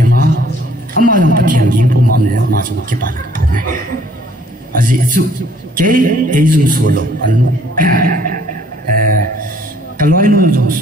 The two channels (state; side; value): normal; both; correlation 0.60